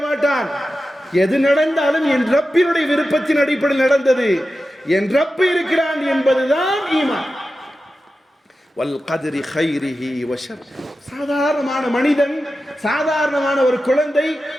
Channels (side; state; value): both; normal; correlation 0.93